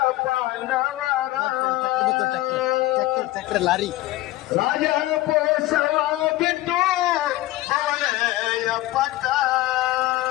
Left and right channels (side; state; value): right; quieter; 17.2 dB